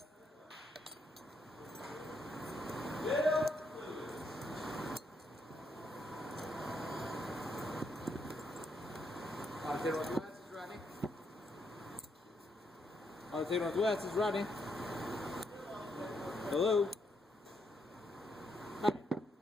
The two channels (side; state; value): both; normal; correlation 0.77